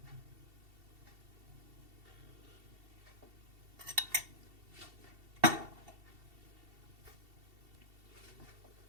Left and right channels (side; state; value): left; late; 2.7 ms